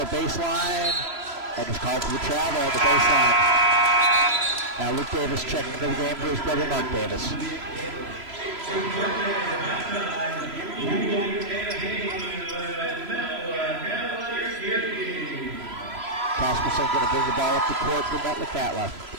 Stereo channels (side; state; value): left; late; 3.0 ms